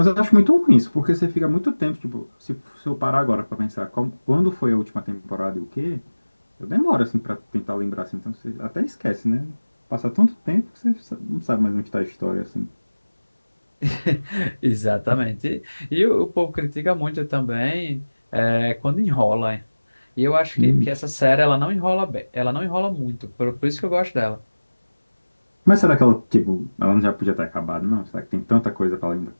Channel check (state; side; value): inverted; both; correlation -1.00